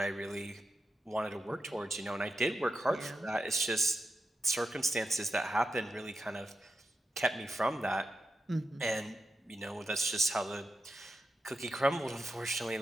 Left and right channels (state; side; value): normal; both; correlation 0.89